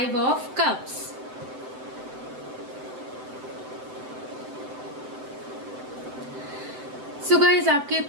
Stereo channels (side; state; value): left; late; 7.8 ms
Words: of Cups। सो गाइज, आपके